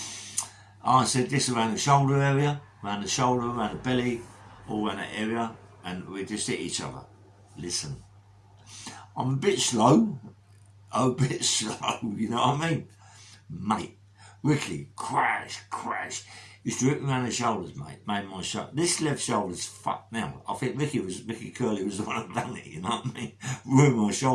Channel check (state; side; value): identical; both; correlation 1.00